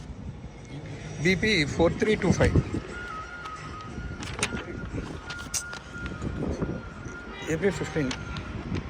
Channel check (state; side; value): identical; both; correlation 1.00